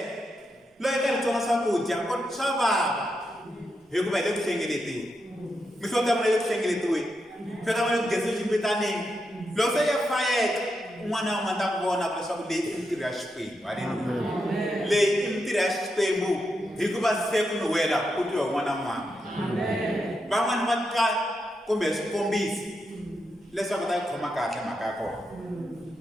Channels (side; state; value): both; normal; correlation 0.84